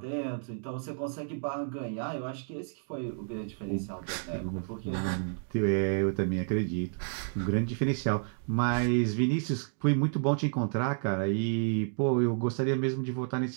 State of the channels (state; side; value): silent; left; digital silence